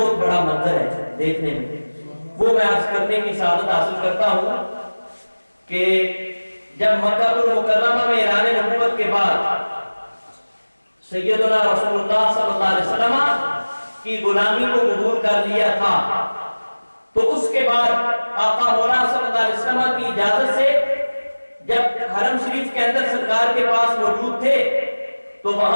بڑا منظر ہے دیکھنے میں، وہ میں عرض کرنے کی سعادت حاصل کرتا ہوں کہ جب مکہ المکرمہ میں اعلان نبوت کے بعد سیدنا رسول اللہ صلی اللہ علیہ وسلم کی غلامی کو قبول کر لیا تھا، تو اس کے بعد آقا مولا صلی اللہ علیہ وسلم کی اجازت سے جب حرم شریف کے اندر سرکار کے پاس موجود تھے تو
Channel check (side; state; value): both; inverted; correlation -1.00